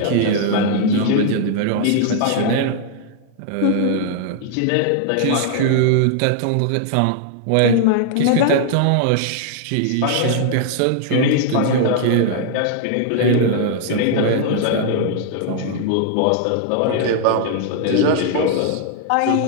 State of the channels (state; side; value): different; both; correlation -0.01